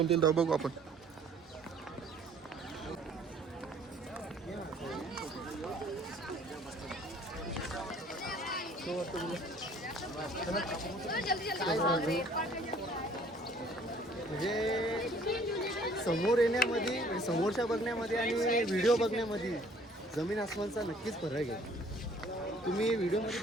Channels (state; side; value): normal; both; correlation 0.56